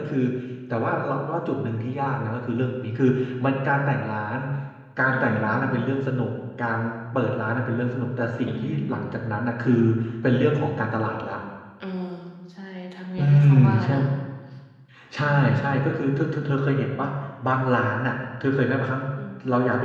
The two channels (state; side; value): identical; both; correlation 1.00